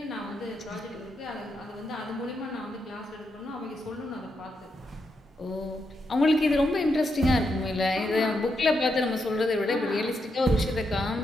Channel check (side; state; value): both; normal; correlation 0.82